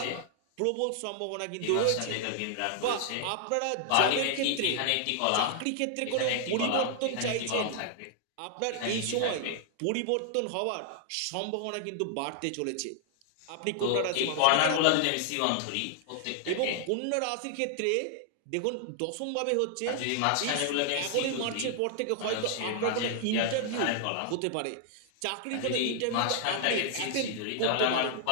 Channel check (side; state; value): both; different; correlation 0.00